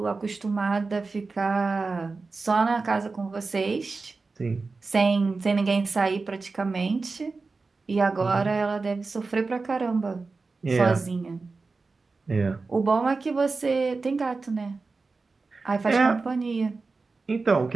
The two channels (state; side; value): quieter; left; 4.0 dB